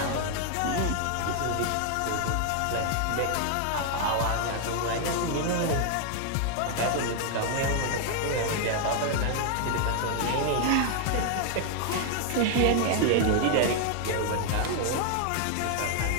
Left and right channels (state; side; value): different; both; correlation 0.00